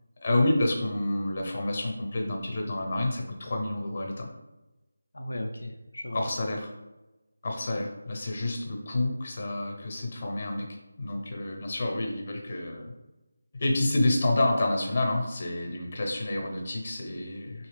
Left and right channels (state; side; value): inverted; both; correlation -0.94